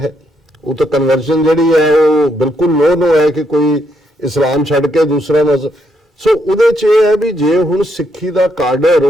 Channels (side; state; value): both; normal; correlation 0.76